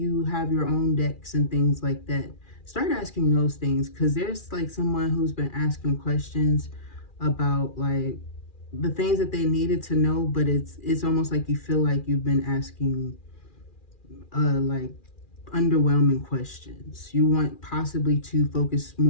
have your own decks and things like that. Start asking those things, because there's like someone who's been asking questions about like the things that they needed to know, but it's almost like you feel like you've been asking like underwhelming questions. You want possibly to focus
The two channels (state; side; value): late; right; 2.4 ms